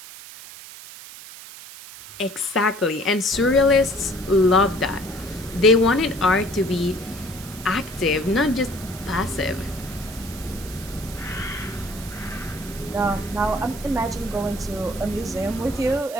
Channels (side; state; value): right; noise; hiss, 15 dB below the sound